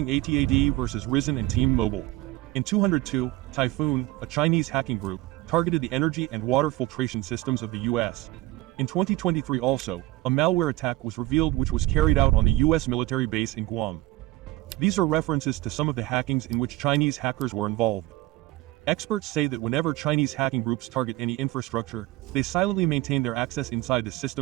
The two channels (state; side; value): quieter; left; 18.1 dB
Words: AT&T versus Verizon and T-Mobile. In 2002, Typhoon, a Chinese hacking group, targeted the energy and water filtration systems of the US. In 2023 also, a malware attack was revealed which was carried out on the US military base in Guam. These are references to some of the hackings in which Chinese hackers were involved. Experts say that whenever Chinese hacking groups target any infrastructure, they silently maintain their access inside the